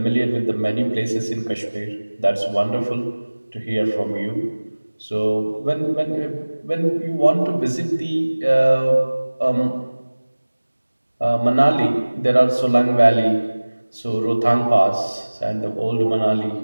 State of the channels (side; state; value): both; inverted; correlation -1.00